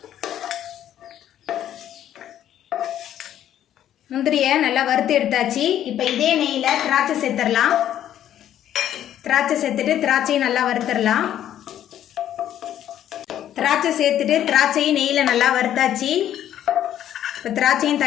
முந்திரியை நல்லா வறுத்து எடுத்தாச்சு இப்போ இதே நெய்யில் திராட்சை சேர்த்துடலாம் திராட்சை சேர்த்துட்டு திராட்சையும் நல்லா வறுத்துடலாம் திராட்சை சேர்த்துட்டு திராட்சையும் நெய்யில் நல்லா வறுத்தாச்சு இப்போ திராட்சையும்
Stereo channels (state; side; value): quieter; right; 11.2 dB